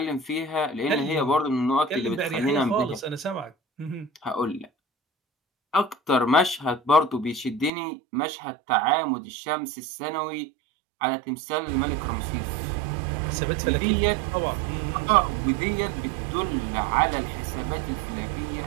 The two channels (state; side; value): drops out; left; at 7.7 s